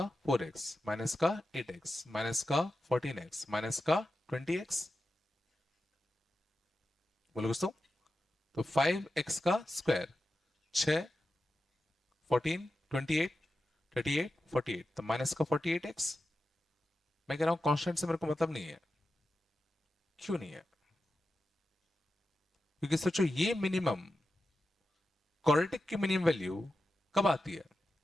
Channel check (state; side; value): normal; both; correlation 0.91